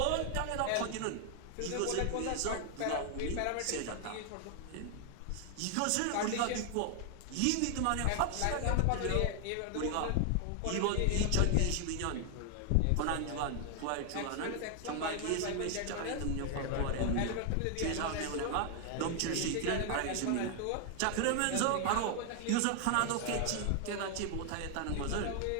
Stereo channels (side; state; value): both; different; correlation 0.00